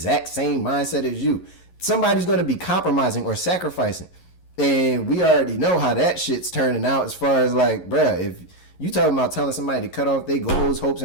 same mindset as you. Somebody's gonna be compromising or sacrificing. And we already know how that shit's turning out as far as like, bruh, if you talking about telling somebody to cut off their goals, hopes,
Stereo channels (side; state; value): right; late; 11 ms